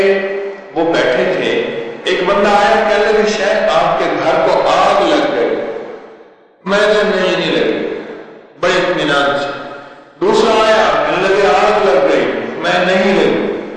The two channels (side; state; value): both; identical; correlation 1.00